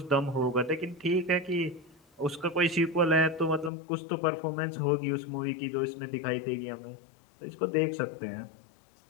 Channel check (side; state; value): right; drops out; at 3.7 s